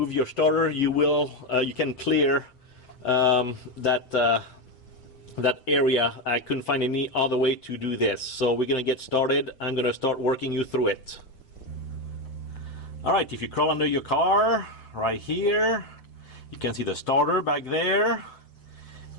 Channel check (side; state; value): right; late; 8.1 ms